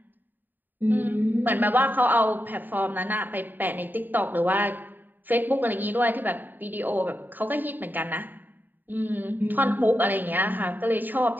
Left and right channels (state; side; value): late; left; 0.090 ms